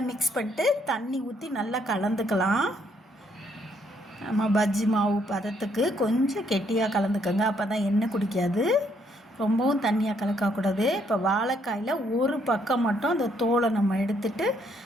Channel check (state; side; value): normal; both; correlation 0.70